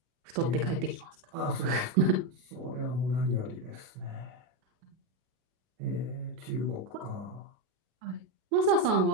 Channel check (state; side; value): late; left; 37 ms